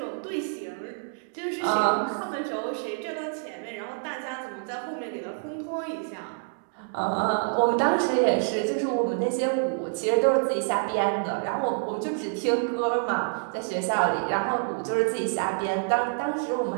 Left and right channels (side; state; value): left; silent; digital silence